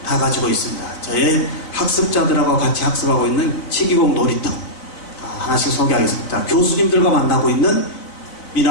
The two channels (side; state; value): right; late; 4.0 ms